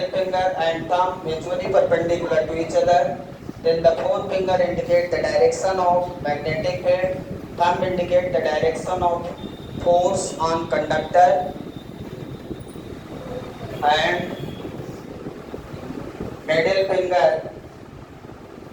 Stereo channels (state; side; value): identical; both; correlation 1.00